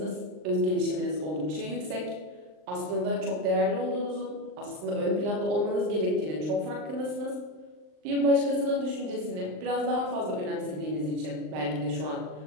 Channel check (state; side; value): late; left; 39 ms